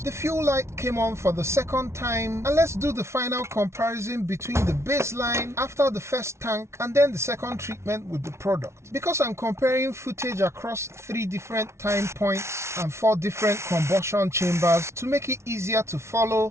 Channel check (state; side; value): late; left; 0.13 ms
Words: the fuel light came on for the second time. And let's do the final comparison between the baseline after the first tank and then the second treatment with the product. Because I'm comparing footage across 3 different time points and 4 different combustion chambers, to make it easier to follow,